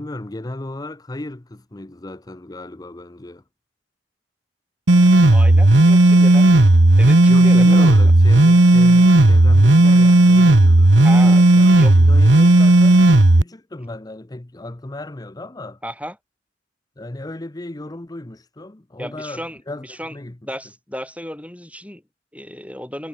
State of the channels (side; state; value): both; normal; correlation 0.79